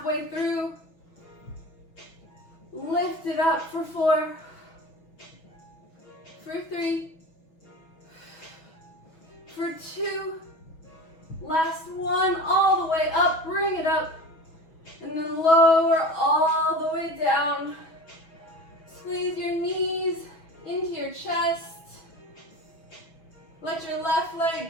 through. Lift it up for 4, for 3, for 2, last one, all the way up, bring it up, and then lower all the way down. Squeeze your knees into your chest. Let your left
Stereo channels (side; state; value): right; late; 6.1 ms